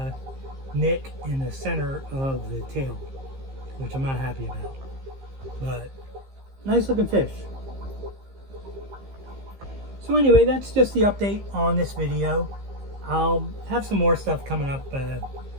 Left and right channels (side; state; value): left; late; 15 ms